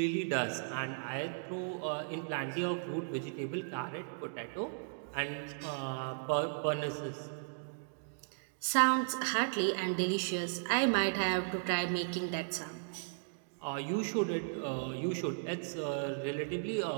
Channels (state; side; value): silent; left; digital silence